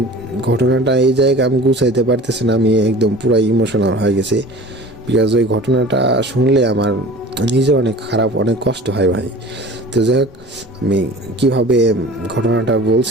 ঘটনাটা এই জায়গায় আমি গুছাইতে পারতেছি না, আমি একদম পুরো ইমোশনাল হয়ে গেছি। বিকজ ওই ঘটনাটা শুনলে আমার নিজে অনেক খারাপ, অনেক কষ্ট হয় ভাই। তো যাই হোক, আমি কীভাবে ঘটনাটা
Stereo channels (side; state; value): both; normal; correlation 0.42